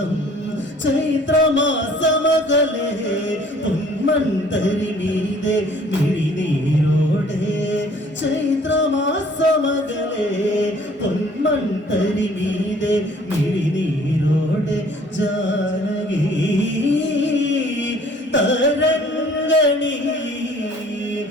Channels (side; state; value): both; normal; correlation 0.55